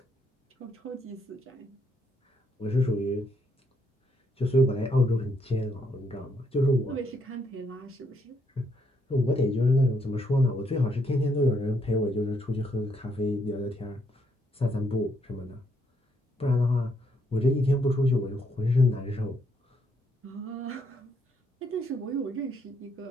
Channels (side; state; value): both; normal; correlation 0.74